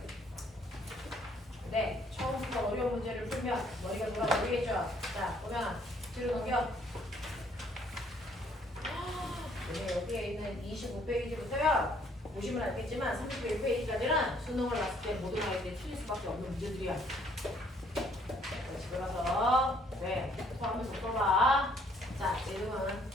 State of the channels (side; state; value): both; normal; correlation 0.64